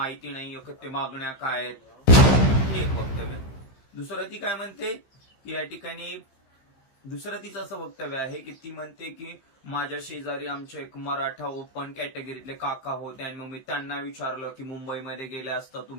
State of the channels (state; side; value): late; right; 15 ms